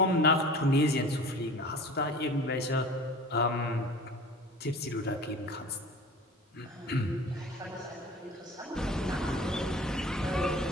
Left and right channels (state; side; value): normal; both; correlation 0.40